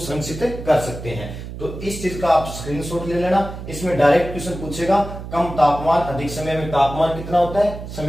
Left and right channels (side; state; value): right; noise; hum, 10 dB below the sound